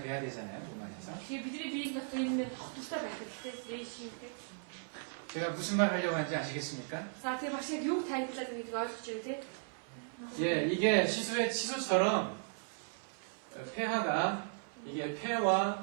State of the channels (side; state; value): left; silent; 53 dB below the other